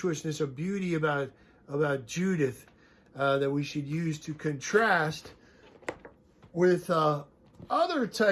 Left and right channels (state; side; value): identical; both; correlation 1.00